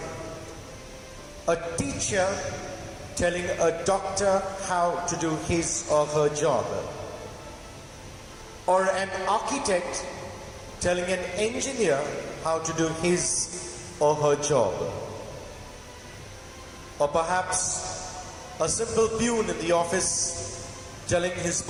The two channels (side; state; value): both; identical; correlation 1.00